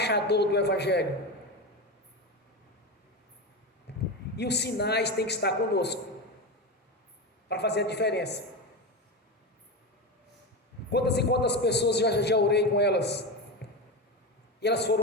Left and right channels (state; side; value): normal; both; correlation 0.19